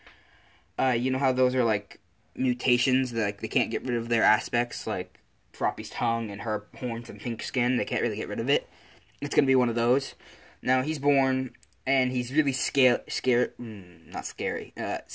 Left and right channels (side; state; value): both; identical; correlation 1.00